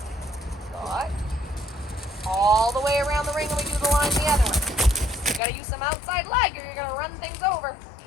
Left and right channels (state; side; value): drops out; right; at 5.4 s